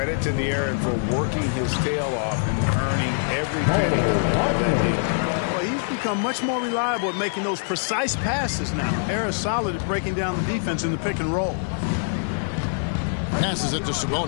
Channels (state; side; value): silent; right; digital silence